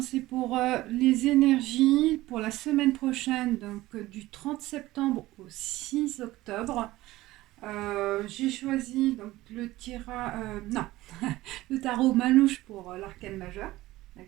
c'est pour les énergies pour la semaine prochaine, donc du 30 septembre au 6 octobre. J'ai choisi donc non, le tarot Manouche pour l'arcane majeur,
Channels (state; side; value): quieter; left; 17.4 dB